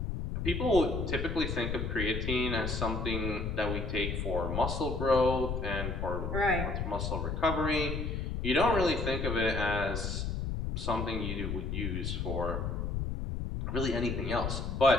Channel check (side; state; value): left; noise; rumble, 2 dB below the sound